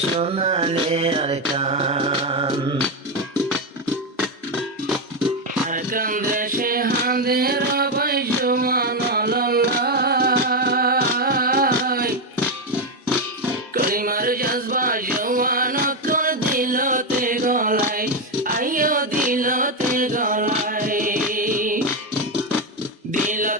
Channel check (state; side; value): normal; both; correlation 0.08